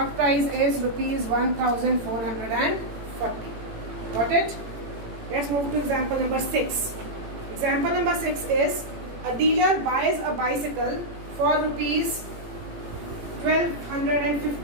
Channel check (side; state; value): left; late; 18 ms